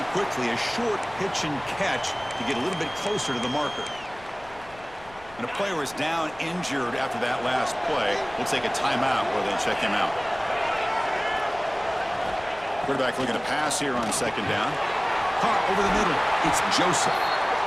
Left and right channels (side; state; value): left; noise; rumble, 22 dB below the sound